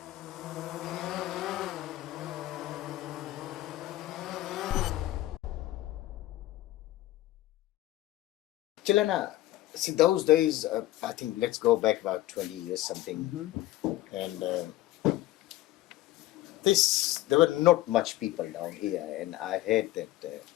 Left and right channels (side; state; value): right; quieter; 15.9 dB